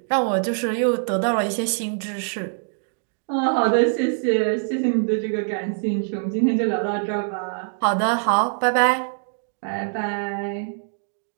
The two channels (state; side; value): silent; left; digital silence